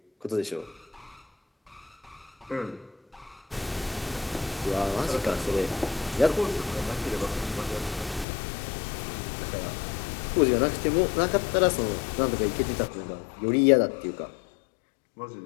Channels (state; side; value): drops out; right; at 8.2 s